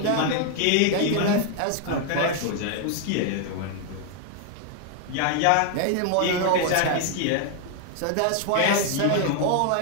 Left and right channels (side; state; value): both; different; correlation 0.00